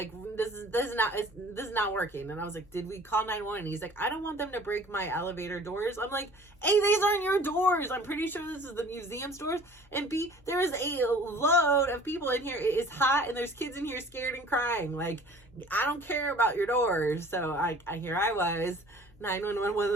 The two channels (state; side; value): normal; both; correlation 0.48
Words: this is not working. And I was like, did we call 911? He's like, I don't want them to break my elevator doors. I'm like, A, these aren't your doors. I'm pretty sure this is the museum's doors. And B, there is a load of people in here. It is hot and there's kids in here scared and crying. Like, I don't care about your doors. So here I was, 911, one